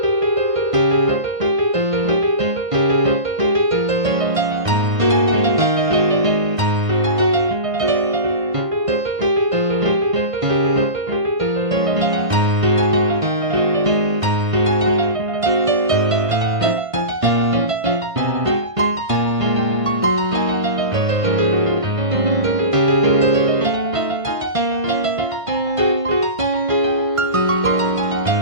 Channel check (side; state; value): left; late; 1.5 ms